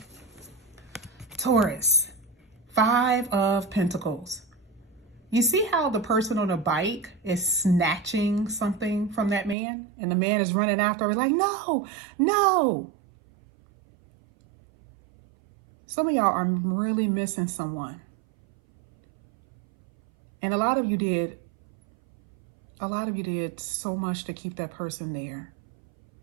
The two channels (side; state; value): left; drops out; at 9.6 s